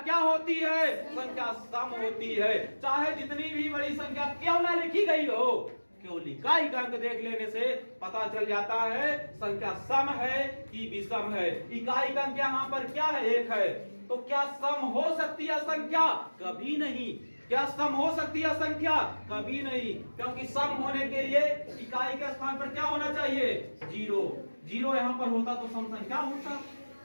होती है, संख्या सम होती है। चाहे जितनी भी बड़ी संख्या क्यों ना लिखी गई हो, केवल इकाई का अंक देख लेने से पता चल जाता है संख्या सम है कि विषम है। इकाई का अंक यहाँ पर क्या है, 1 है। तो क्या सम हो सकती है संख्या, कभी नहीं। क्या सम हो सकती है संख्या, कभी नहीं, क्योंकि सम होने के लिए इकाई के स्थान पर क्या होना चाहिए, 0। 0 यहाँ पर होता तो सम संख्या होता,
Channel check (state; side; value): inverted; both; correlation -1.00